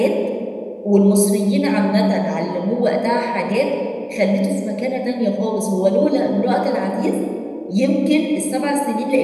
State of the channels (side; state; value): both; identical; correlation 1.00